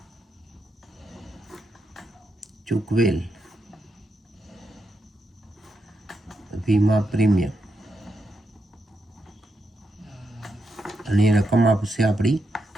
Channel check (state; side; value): normal; both; correlation 0.84